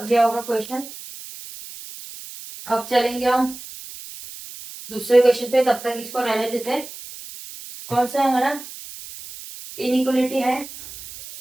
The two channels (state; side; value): noise; right; hiss, 14 dB below the sound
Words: दिया होगा क्वेश्चन। अब चलेंगे हम दूसरे क्वेश्चन पे, तब तक इसको रहने देते हैं। कौन सा है हमारा, इनइक्वलिटी है,